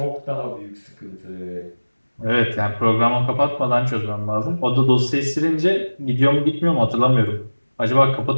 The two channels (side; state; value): both; inverted; correlation -1.00